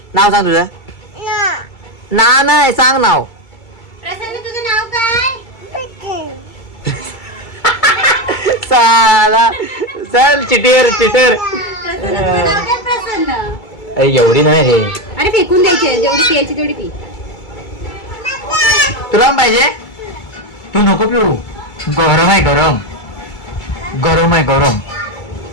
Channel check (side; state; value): right; late; 2.3 ms